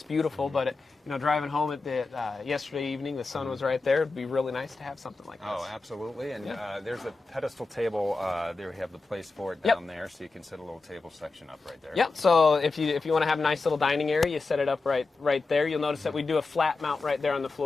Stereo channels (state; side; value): quieter; right; 3.8 dB